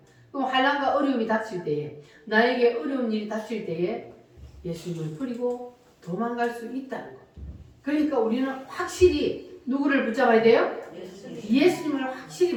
그럼 환난과 어려움이 닥칠 때에 나에게 어려운 일이 닥칠 때에 예수님을 버리고 도망갈 수 있다는 거. 그러니까 우리는 확실히 누구를 붙잡아야 돼요? 예수님을 확실히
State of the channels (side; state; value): both; identical; correlation 1.00